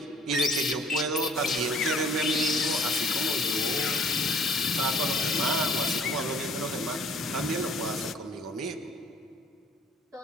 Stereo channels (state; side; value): normal; both; correlation 0.55